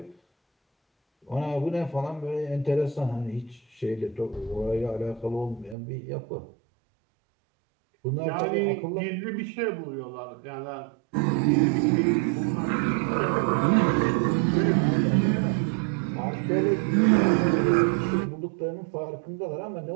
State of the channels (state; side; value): drops out; left; at 5.8 s